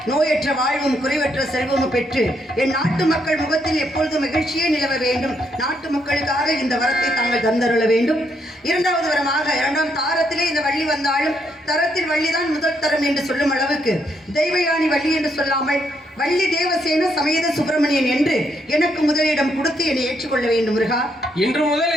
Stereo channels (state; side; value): normal; both; correlation 0.75